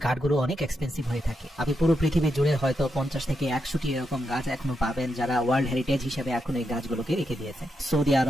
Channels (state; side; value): normal; both; correlation 0.84